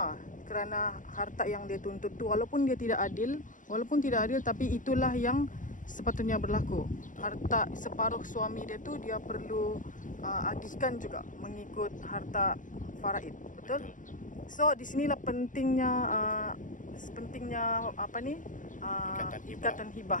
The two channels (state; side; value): late; right; 0.38 ms